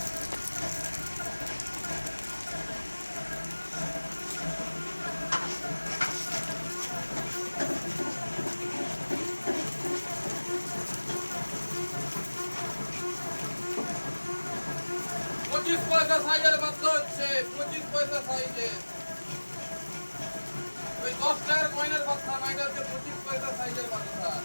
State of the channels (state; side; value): inverted; both; correlation -1.00